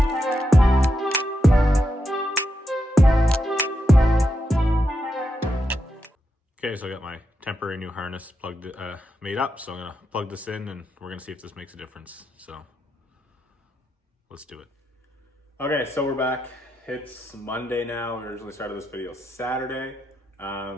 Okay, so I got my temporary new harness plugged, made up. So I'm gonna plug this in and we're gonna see if this makes a difference. So let's do it. Okay, so we're back. It's Monday now. We originally started this video Saturday. Did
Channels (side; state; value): both; normal; correlation 0.85